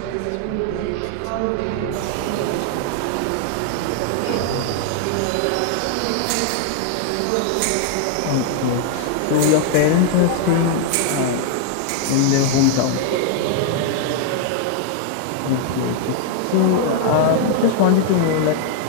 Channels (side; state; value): both; different; correlation 0.00